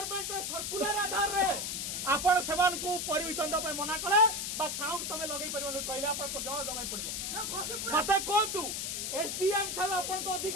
सर्कुलर आधार रे आपण सेमान को परमिशन दपे मना कले बा साउंड तमे लगै परिबो कहले आपण को जवाब दमै पड़िबो मते कोंतु एसडीएम थार आपण को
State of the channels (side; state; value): left; noise; hiss, 2 dB below the sound